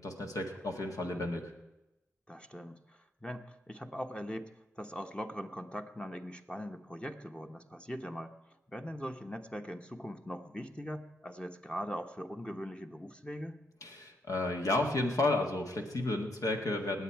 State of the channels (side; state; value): both; normal; correlation 0.76